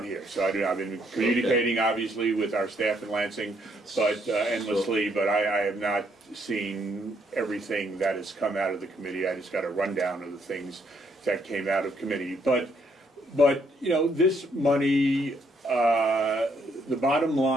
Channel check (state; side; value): normal; both; correlation 0.71